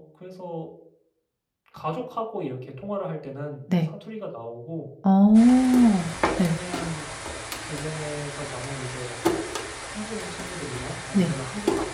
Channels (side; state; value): both; identical; correlation 1.00